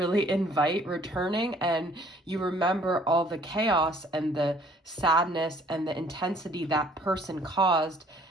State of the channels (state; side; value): normal; both; correlation 0.58